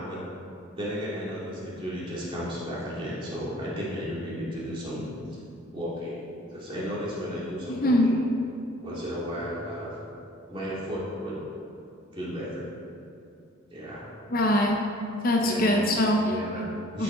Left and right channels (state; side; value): normal; both; correlation 0.53